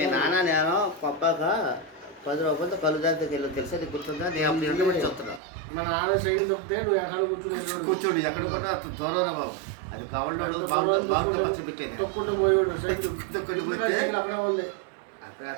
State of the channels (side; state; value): left; drops out; at 5.4 s